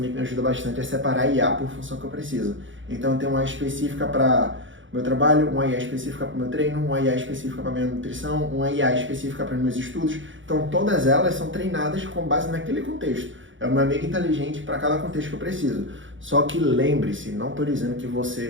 que me ajuda bastante é separar a IA por função que eu preciso. Então eu tenho uma específica para o meu trabalho, uma IA específica para o meu treino, uma IA específica para a minha nutrição, uma IA específica para os meus estudos. Então todas elas são treinadas com base naquele contexto. É uma amiga inteligente para cada contexto que eu preciso. Só que lembre-se, não estou dizendo que você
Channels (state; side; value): late; left; 0.56 ms